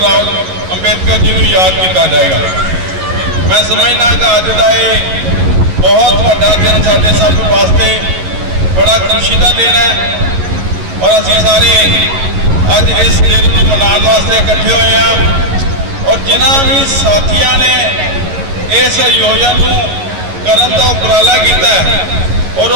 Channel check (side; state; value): left; late; 11 ms